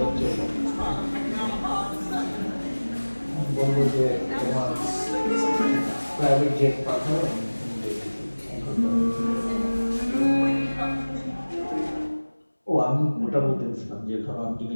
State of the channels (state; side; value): inverted; both; correlation -1.00